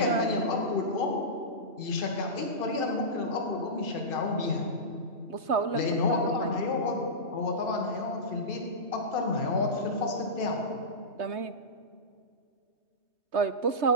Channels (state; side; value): late; left; 3.2 ms